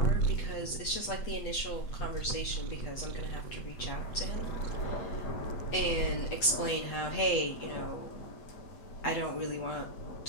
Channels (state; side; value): late; right; 8.3 ms